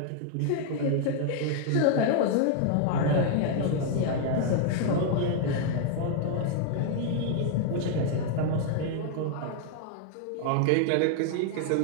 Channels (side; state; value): both; different; correlation 0.00